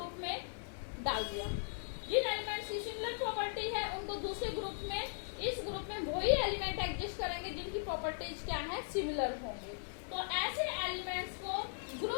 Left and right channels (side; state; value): right; silent; digital silence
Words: में डाल दिया। जिन एलिमेंट्स की सिमिलर प्रॉपर्टी है उनको दूसरे ग्रुप में, इस ग्रुप में वही एलिमेंट एग्जिस्ट करेंगे जिनकी प्रॉपर्टीज क्या है, सिमिलर होंगे। तो ऐसे एलिमेंट्स को